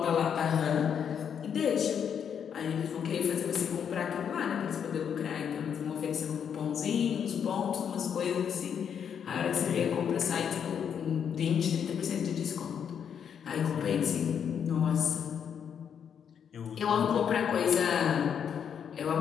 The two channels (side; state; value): right; quieter; 7.9 dB